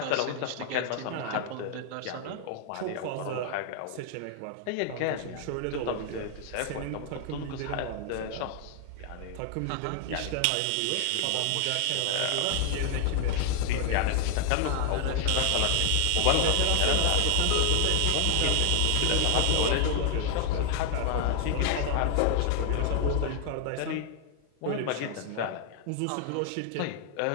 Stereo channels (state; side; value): different; both; correlation 0.00